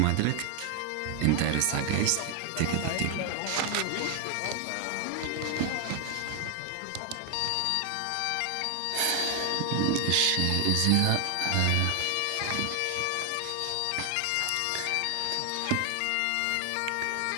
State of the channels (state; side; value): different; both; correlation 0.00